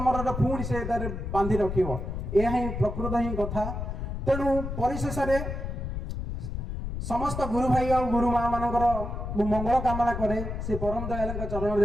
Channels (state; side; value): noise; left; rumble, 5 dB below the sound